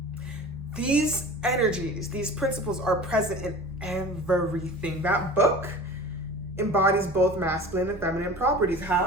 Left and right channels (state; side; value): normal; both; correlation 0.39